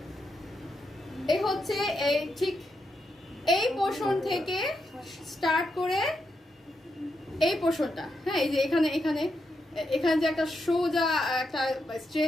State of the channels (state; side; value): normal; both; correlation 0.83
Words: এই হচ্ছে এই ঠিক এই পোর্শন থেকে স্টার্ট করে এই পোর্শনটা, হ্যাঁ এই যে এখানে এখানে এখানে যে একটা সোজা একটা